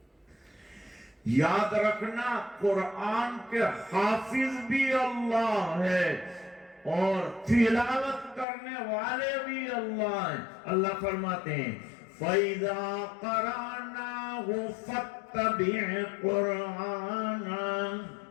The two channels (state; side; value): drops out; right; at 8.5 s